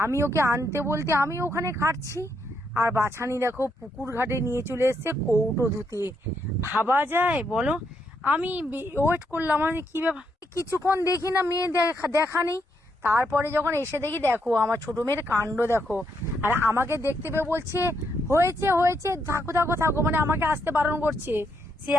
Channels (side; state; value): both; normal; correlation 0.78